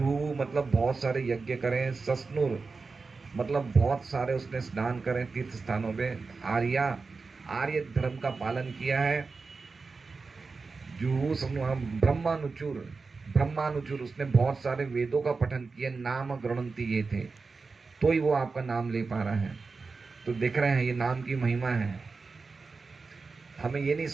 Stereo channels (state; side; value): quieter; left; 4.3 dB